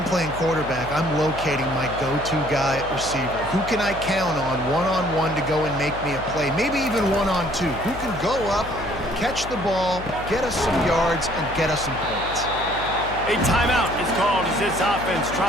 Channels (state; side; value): noise; left; hum, 12 dB below the sound